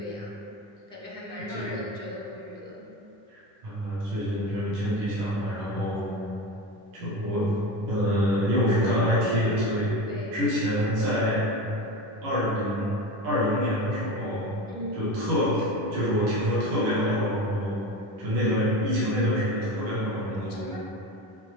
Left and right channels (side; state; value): left; late; 10 ms